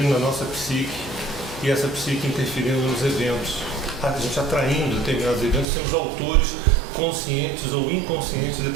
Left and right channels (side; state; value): left; drops out; at 5.7 s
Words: na nossa psique, e essa psique interferindo nos eventos. A gente atraindo determinados eventos, somos autores conscientes ou inconscientes de